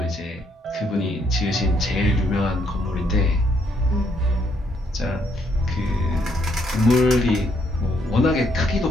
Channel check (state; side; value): normal; both; correlation 0.72